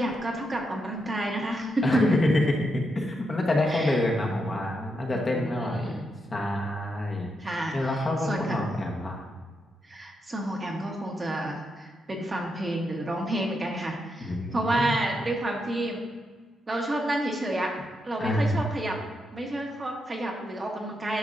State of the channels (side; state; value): both; normal; correlation 0.83